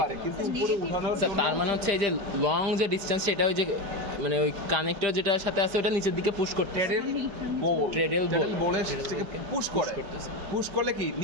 কিন্তু উপরে উঠানোর স্যার জন্য তার মানে হচ্ছে এই যে লং যে ডিসটেন্স সেটা ওই যে মানে ওই কানেক্টর যেটার সাথে আছে ওটা নিচের দিকে পুশ করতে ট্যারেল বোলের থেকে পুশ করে। পুশ করলে কি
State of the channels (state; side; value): late; left; 5.0 ms